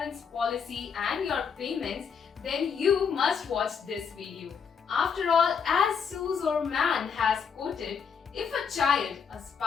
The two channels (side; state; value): right; quieter; 6.5 dB